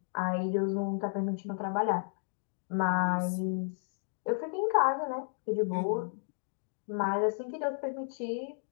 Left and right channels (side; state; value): right; silent; digital silence